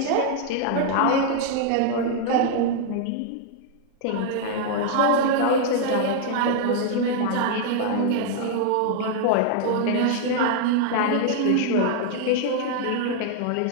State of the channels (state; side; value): different; both; correlation 0.00